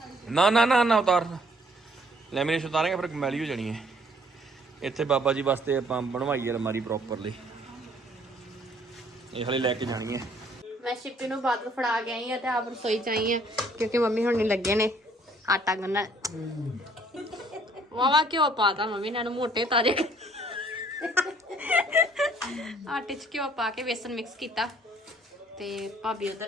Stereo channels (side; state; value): both; normal; correlation 0.61